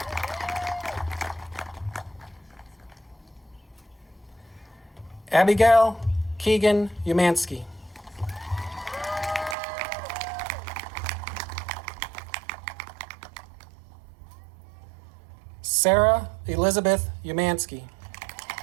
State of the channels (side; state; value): left; drops out; at 9.6 s